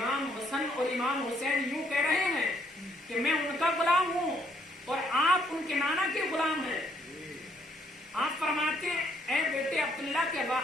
حسن اور امام حسین یوں کہہ رہے ہیں کہ میں ان کا غلام ہوں اور آپ ان کے نانا کے غلام ہیں. آپ فرماتے ہیں اے بیٹے عبداللہ کے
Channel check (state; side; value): normal; both; correlation 0.69